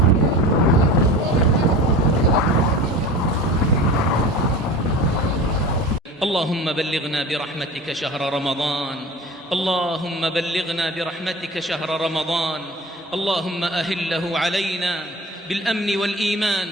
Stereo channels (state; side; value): normal; both; correlation 0.36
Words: اللهم بلغنا برحمتك شهر رمضان اللهم بلغنا برحمتك شهر رمضان اللهم أهله علينا بالأمن والإيمان